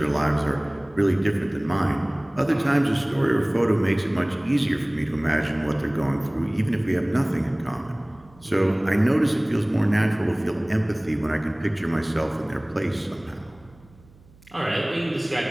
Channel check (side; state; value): right; noise; hum, 26 dB below the sound